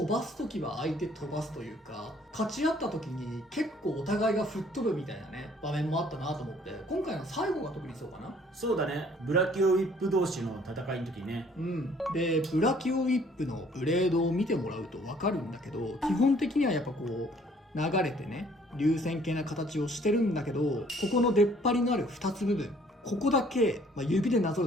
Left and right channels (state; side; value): normal; both; correlation 0.59